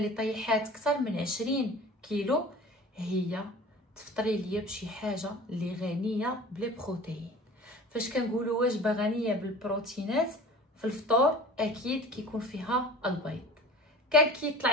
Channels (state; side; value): normal; both; correlation 0.40